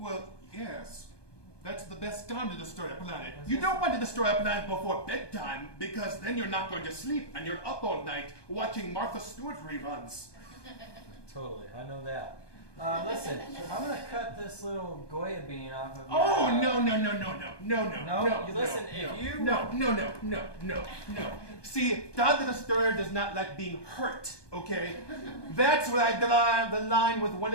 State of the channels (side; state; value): right; late; 1.2 ms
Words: yes. That's the best time to destroy a planet. You don't want to destroy a planet before bedtime because then you're not going to sleep and you're up all night watching Martha Stewart reruns. Totally, I know that. Listen, I'm gonna cut this little Goya bean off of your... Oh, no. See, Todd the Destroyer does not like being hurt, okay? That's where I draw the line with one